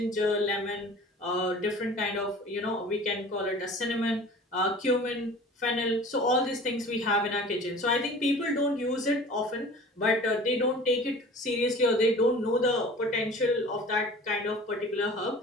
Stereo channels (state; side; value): normal; both; correlation 0.43